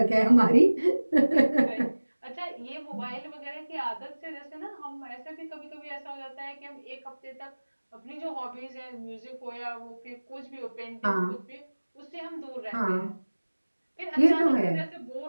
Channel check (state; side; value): inverted; both; correlation -1.00